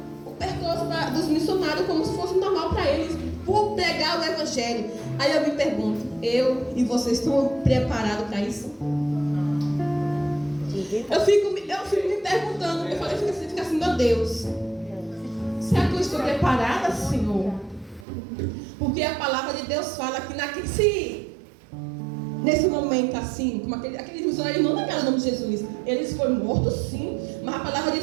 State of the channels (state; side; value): drops out; left; at 18.1 s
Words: o percurso dos missionários como se fosse normal para eles, por pregar o evangelho. Aí eu me pergunto, eu e vocês estão preparados para isso? Eu fico me perguntando, eu falei, fica assim, meu Deus, será que eu estou preparada, Senhor? Porque a palavra de Deus fala que nesse momento assim, como aqueles missionários não negaram o nome de Jesus, eles foram mortos sim, mas a palavra de